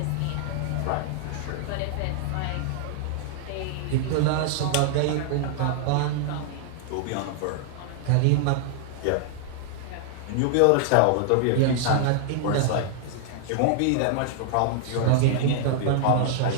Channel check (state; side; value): different; both; correlation -0.01